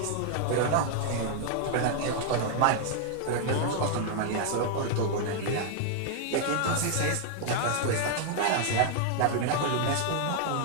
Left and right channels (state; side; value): different; both; correlation 0.00